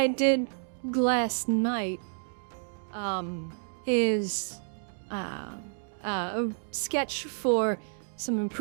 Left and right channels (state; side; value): silent; left; 58 dB below the other